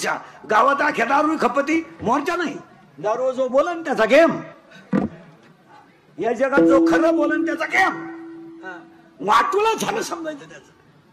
गावात अख्या दारू खपती मोर्चा नाही. दारू जो बोलन त्याचा गेम, या जगात जो खरं बोलन त्याचा गेम. वाटूला झालं समजायचं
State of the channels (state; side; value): identical; both; correlation 1.00